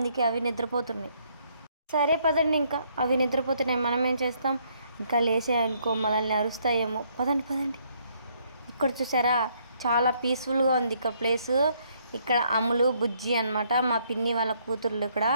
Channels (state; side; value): inverted; both; correlation -0.69